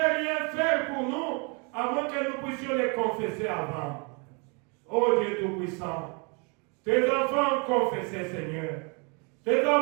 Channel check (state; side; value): quieter; left; 33.6 dB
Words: rien faire pour nous, à moins que nous puissions les confesser avant. Ô Dieu Tout-Puissant, tes enfants ont confessé, Seigneur. Tes